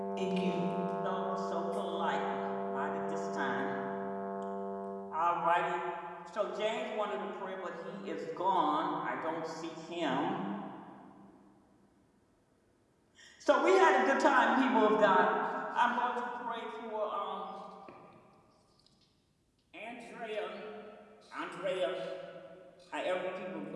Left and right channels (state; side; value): identical; both; correlation 1.00